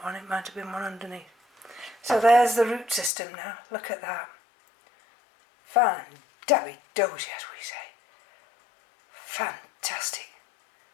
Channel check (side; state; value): right; drops out; at 3.1 s